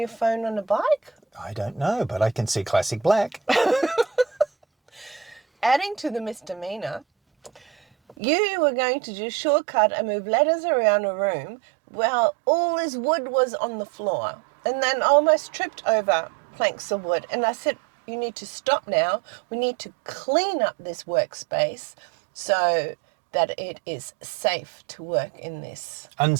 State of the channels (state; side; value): drops out; left; at 8.2 s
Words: phone on a bike? I don't know, but I can see classic black. Adding to the misdemeanour, you were going to do shortcut and move letters around a room while all this wood was on the floor. And then I almost tripped over planks of wood. And I said, you need to stop now. We need to clean up this workspace so that it is safe to work in this.